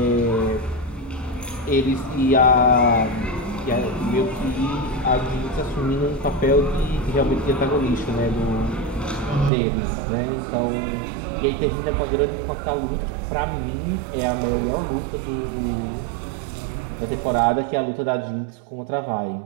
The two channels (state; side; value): drops out; left; at 9.5 s